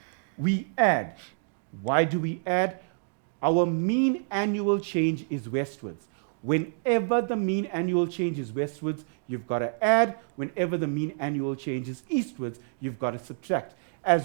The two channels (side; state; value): left; silent; digital silence